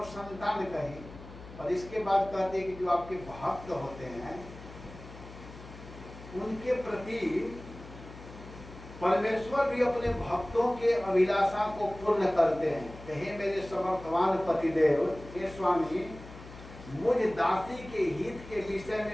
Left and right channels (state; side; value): noise; left; hum, 16 dB below the sound